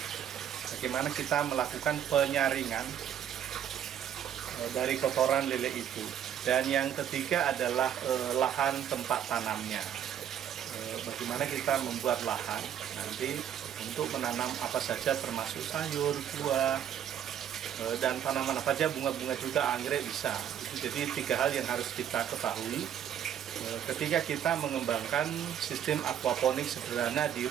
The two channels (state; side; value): quieter; left; 9.6 dB